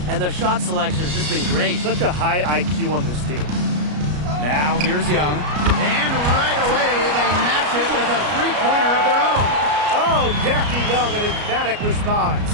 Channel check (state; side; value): late; left; 33 ms